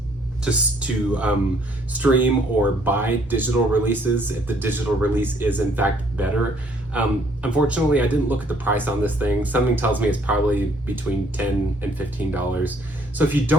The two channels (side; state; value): both; normal; correlation 0.64